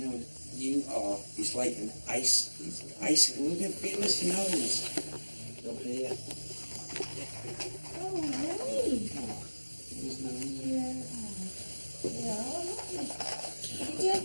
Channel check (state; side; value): inverted; both; correlation -1.00